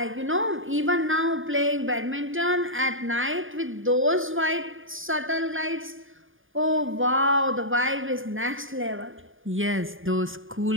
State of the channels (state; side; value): late; left; 0.58 ms